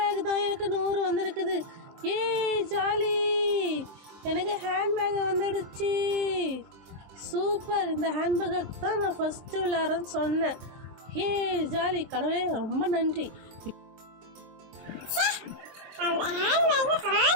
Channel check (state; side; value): late; left; 23 ms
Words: தான் எனக்கு 100 வந்திருக்குது. ஜாலி, எனக்கு ஹேண்ட்பேக் வந்துடுச்சு. சூப்பர், இந்த ஹேண்ட்பேக் தான் நான் ஃபஸ்ட்டு விளையாடுறேன்னு சொன்னேன். ஜாலி, கடவுளே ரொம்ப நன்றி. அந்த ஹேண்ட்பேக்